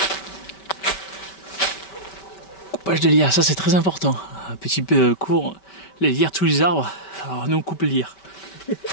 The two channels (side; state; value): right; late; 5.2 ms